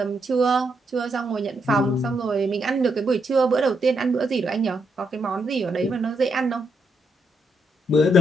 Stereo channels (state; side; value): normal; both; correlation 0.79